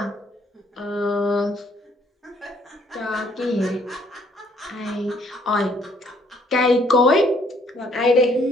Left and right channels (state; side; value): normal; both; correlation 0.65